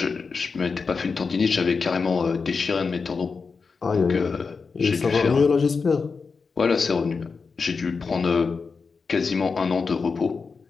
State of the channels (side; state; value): right; quieter; 4.9 dB